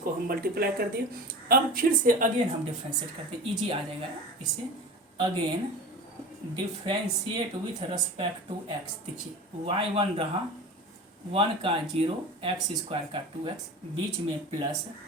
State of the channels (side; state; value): both; normal; correlation 0.33